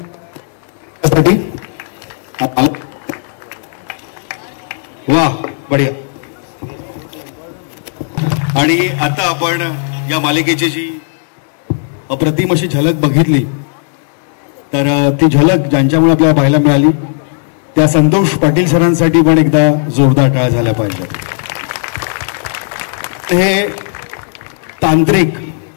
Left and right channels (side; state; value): right; silent; digital silence